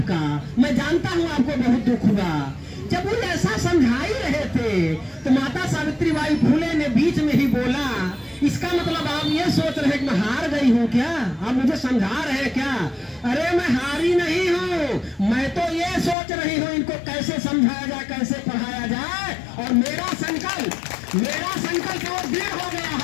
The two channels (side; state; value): right; drops out; at 16.2 s